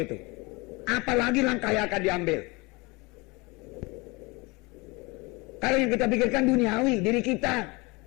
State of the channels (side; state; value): right; quieter; 25.7 dB